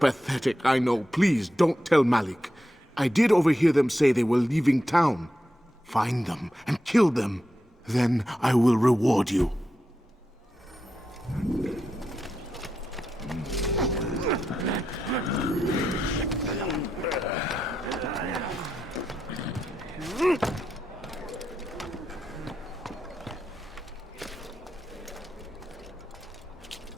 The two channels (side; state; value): both; normal; correlation 0.86